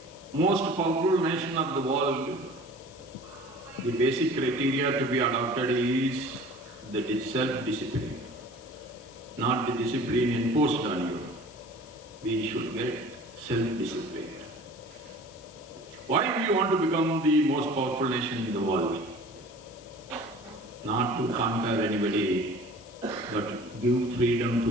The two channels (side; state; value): left; noise; hiss, 23 dB below the sound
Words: most powerful nation of the world, the basic criteria to be adopted is the self-discipline, not the discipline imposed on you. We should get self-disciplined. Why we want to become the most powerful nation in the world? Not to conquer anybody, but give freedom